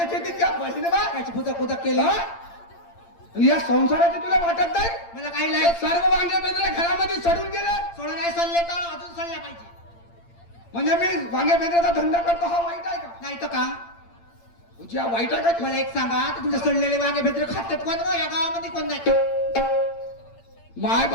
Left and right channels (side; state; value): right; late; 8.8 ms